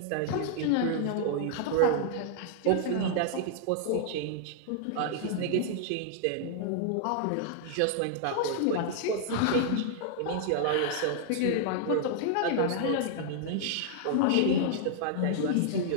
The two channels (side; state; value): both; different; correlation -0.01